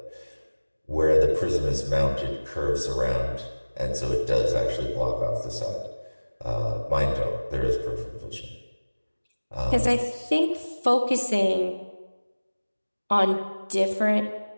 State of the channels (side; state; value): both; inverted; correlation -1.00